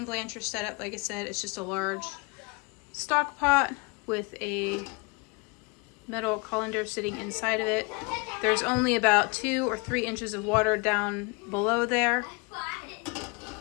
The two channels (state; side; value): quieter; right; 29.5 dB